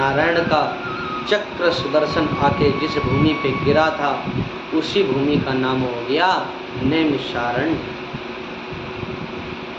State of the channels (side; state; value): both; identical; correlation 1.00